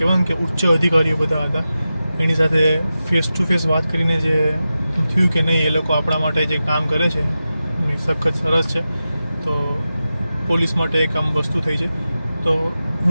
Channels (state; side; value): inverted; both; correlation -0.93